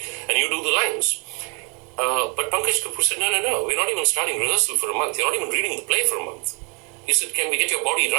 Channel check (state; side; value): quieter; left; 33.1 dB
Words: and you do the lines. But Pankaj Kapoor said, no, we're not even starting rehearsal for a month. You're not even reading the play for a month. He said, can we get your body